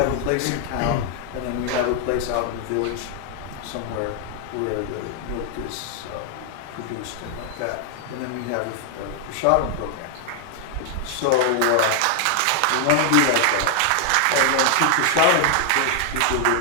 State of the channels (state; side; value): different; both; correlation 0.00